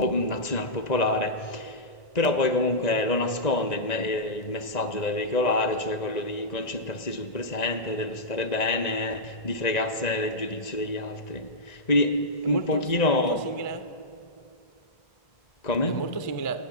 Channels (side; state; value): right; late; 1.9 ms